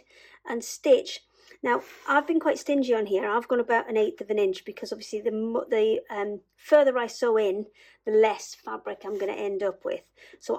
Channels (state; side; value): identical; both; correlation 1.00